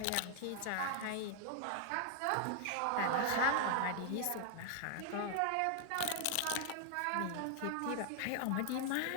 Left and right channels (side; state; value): both; different; correlation 0.00